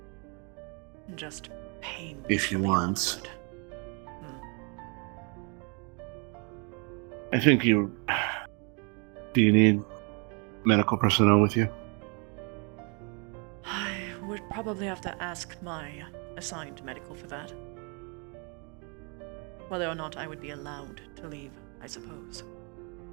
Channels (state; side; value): quieter; left; 34.0 dB